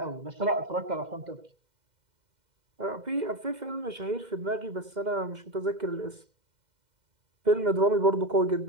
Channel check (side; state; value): left; late; 2.1 ms